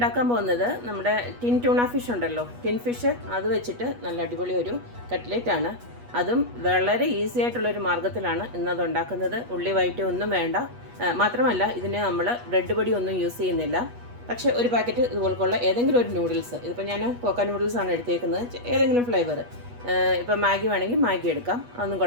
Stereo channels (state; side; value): late; left; 8.3 ms